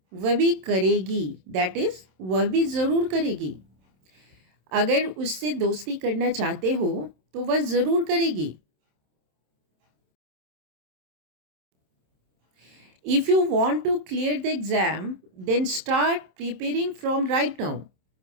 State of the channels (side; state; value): left; late; 27 ms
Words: वह भी करेगी, दैट इज़ वह भी ज़रूर करेगी. अगर उससे दोस्ती करना चाहते हो तो वह ज़रूर करेगी. If you want to clear the exam then start preparing from right now.